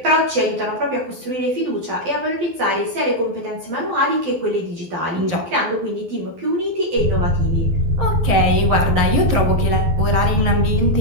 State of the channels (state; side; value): late; left; 12 ms